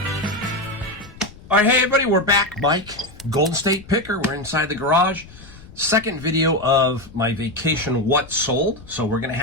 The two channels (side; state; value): left; noise; rumble, 20 dB below the sound